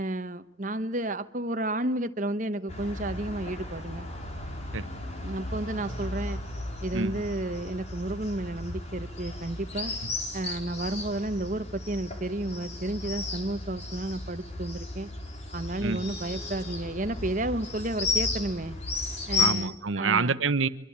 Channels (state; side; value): normal; both; correlation 0.43